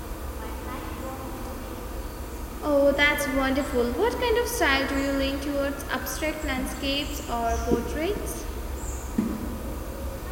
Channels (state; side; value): identical; both; correlation 1.00